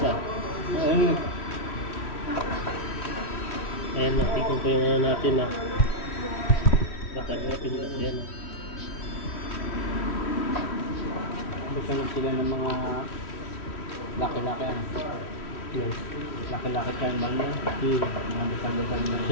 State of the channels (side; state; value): right; late; 3.1 ms